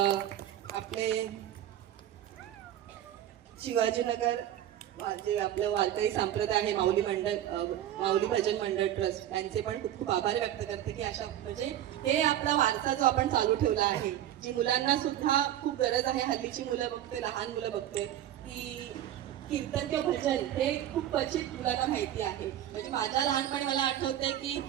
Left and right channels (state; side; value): quieter; left; 11.9 dB